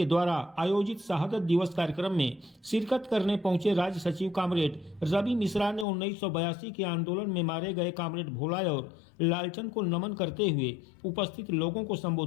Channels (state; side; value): drops out; right; at 5.9 s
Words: द्वारा आयोजित शहादत दिवस कार्यक्रम में शिरकत करने पहुंचे राज्य सचिव कॉमरेड रवि मिश्रा ने 1982 के आंदोलन में मारे गए कॉमरेड भोला और लालचंद को नमन करते हुए उपस्थित लोगों को